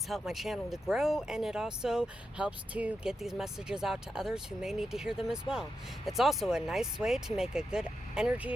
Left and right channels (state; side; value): normal; both; correlation 0.87